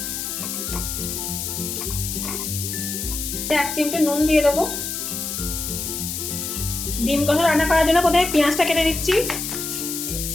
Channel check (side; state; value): left; noise; hiss, 4 dB below the sound